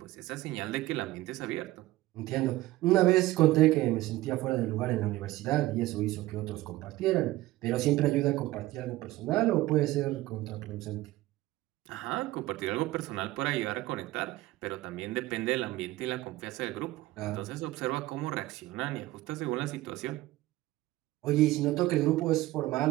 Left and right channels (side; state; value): left; quieter; 17.2 dB